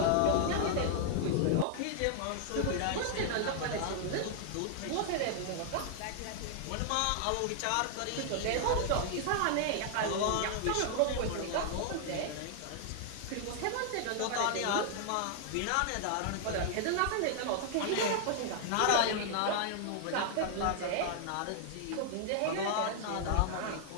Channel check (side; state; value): both; different; correlation 0.00